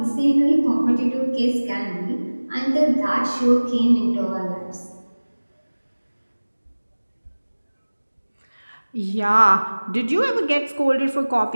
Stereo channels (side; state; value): both; inverted; correlation -1.00